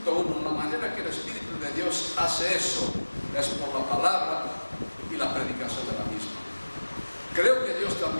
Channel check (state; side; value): inverted; both; correlation -1.00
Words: 1. La manera que el Espíritu de Dios hace eso es por la palabra y la predicación de la misma. Creo que Dios